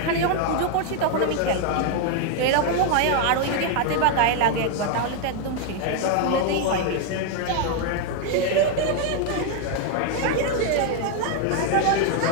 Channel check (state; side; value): different; both; correlation 0.00